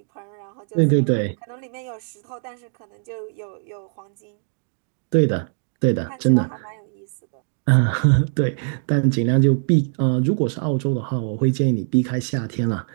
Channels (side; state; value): left; silent; 64 dB below the other